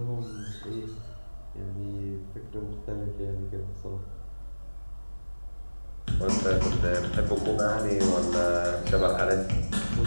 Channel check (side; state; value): both; inverted; correlation -1.00